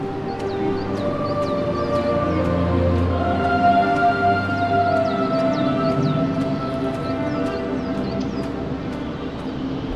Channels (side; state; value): both; identical; correlation 1.00